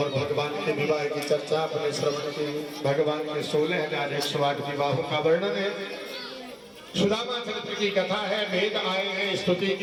भगवान के विवाह की चर्चा अपने श्रवण की। भगवान के 16,108 विवाहों का वर्णन है। सुदामा चरित्र की कथा है। वेद आए हैं, स्तुति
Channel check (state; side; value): identical; both; correlation 1.00